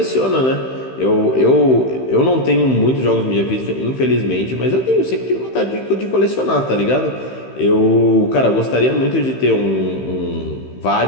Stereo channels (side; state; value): right; late; 15 ms